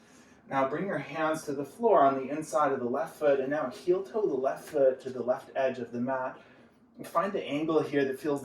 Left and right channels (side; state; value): both; identical; correlation 1.00